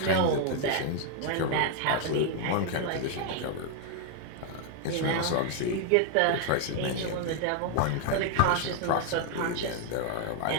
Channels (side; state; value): both; different; correlation 0.00